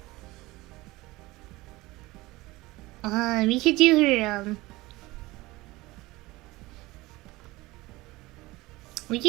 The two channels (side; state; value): left; quieter; 20.2 dB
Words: We could do her We